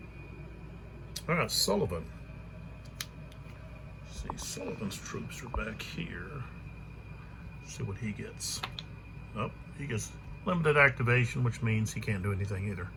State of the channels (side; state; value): both; identical; correlation 1.00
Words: All right, Sullivan. Let's see, Sullivan's troops are back here. Let's see what he gets. Oh, he gets limited activation, which means he can't do anything either.